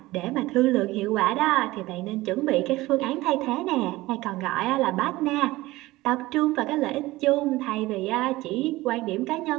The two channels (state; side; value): quieter; left; 18.8 dB